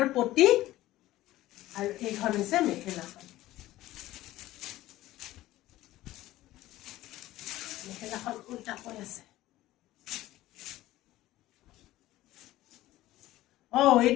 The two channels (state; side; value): quieter; right; 15.9 dB